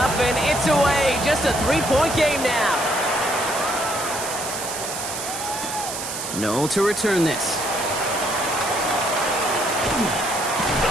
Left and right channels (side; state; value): right; noise; hiss, 6 dB below the sound